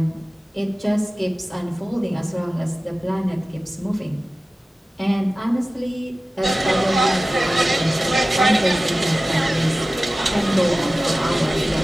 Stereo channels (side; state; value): both; normal; correlation 0.96